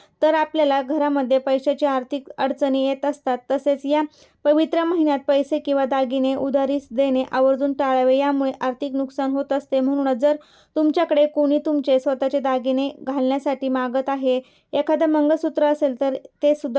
तर आपल्याला घरामध्ये पैशाची आर्थिक अडचणी येत असतात. तसेच या पवित्र महिन्यात पैसे किंवा दागिने उधारीस देणे आवर्जून टाळावे, यामुळे आर्थिक नुकसान होत असते. म्हणूनच जर तुमच्याकडे कोणी तुमचे स्वतःचे दागिने घालण्यासाठी मागत आहे, एखादं मंगळसूत्र असेल तर ते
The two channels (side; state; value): both; identical; correlation 1.00